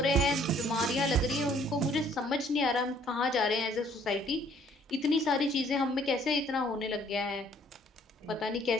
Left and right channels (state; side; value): normal; both; correlation 0.61